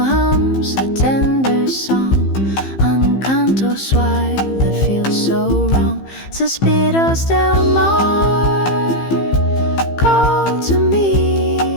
hums a tender song, un canto suave that feels so wrong. Suspiros del mar call to me,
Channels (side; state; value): right; late; 15 ms